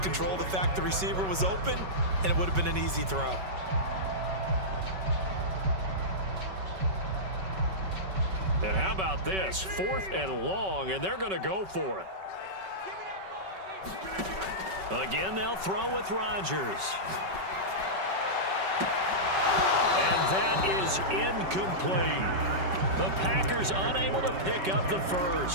control the fact the receiver was open, and it would have been an easy throw. And how about this? 4th and long, and they're going to go for it. Again, they'll throw with Rodgers. And that is incomplete. The Packers unable to pick up the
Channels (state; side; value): late; left; 5.3 ms